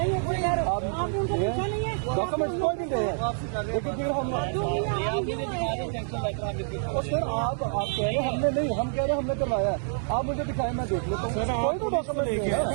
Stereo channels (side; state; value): left; silent; digital silence